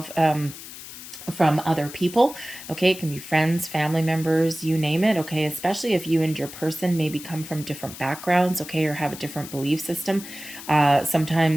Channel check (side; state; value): left; noise; hiss, 13 dB below the sound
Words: from other people, okay? It can be friends, family members, you name it, okay? Especially if you and your person maybe come from different backgrounds, okay, or have a different belief system.